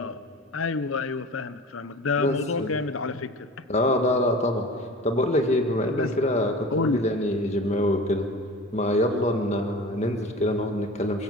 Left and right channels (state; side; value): normal; both; correlation 0.38